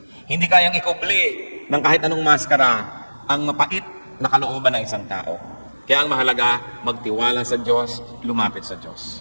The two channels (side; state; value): both; inverted; correlation -1.00